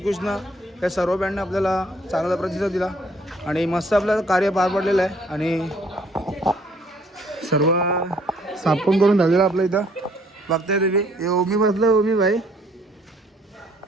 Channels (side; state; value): both; normal; correlation 0.62